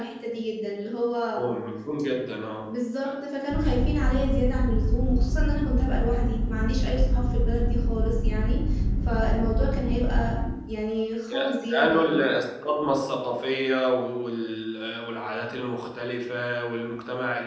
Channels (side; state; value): both; identical; correlation 1.00